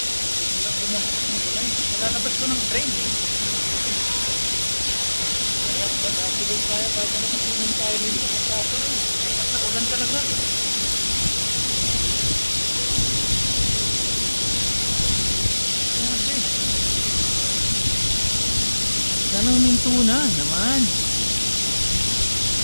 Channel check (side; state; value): both; inverted; correlation -1.00